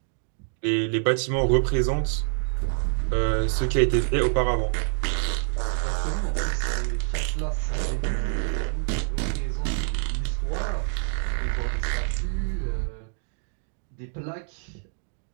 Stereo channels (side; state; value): left; silent; 61 dB below the other